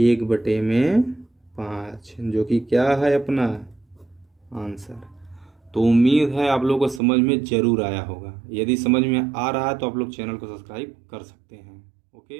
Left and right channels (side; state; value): left; drops out; at 7.0 s